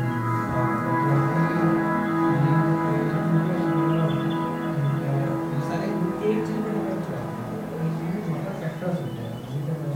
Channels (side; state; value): both; identical; correlation 1.00